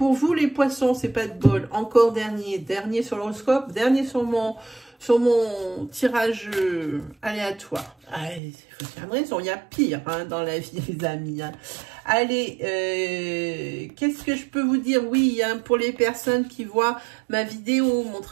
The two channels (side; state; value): left; drops out; at 8.4 s